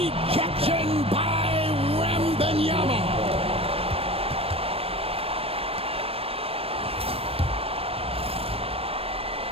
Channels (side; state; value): left; late; 0.28 ms